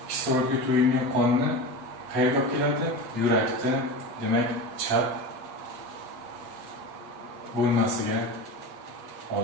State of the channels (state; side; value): late; left; 8.4 ms